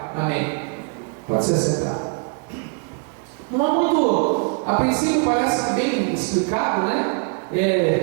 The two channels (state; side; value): quieter; left; 37.7 dB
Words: Amém. Pode se sentar. Não é muito, a princípio parece bem explicado, né?